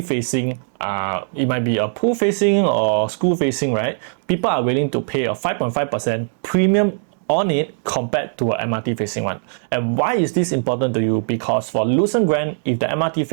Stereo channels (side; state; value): left; silent; digital silence